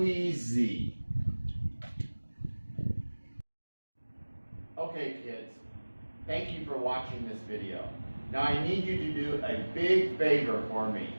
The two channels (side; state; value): both; inverted; correlation -1.00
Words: Okay, kids, thank you for watching this video. Now I need you to do a big favor for me.